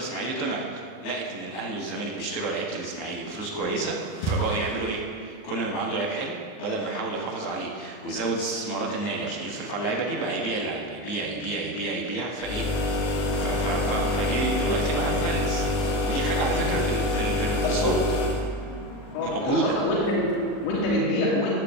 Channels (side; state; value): right; late; 39 ms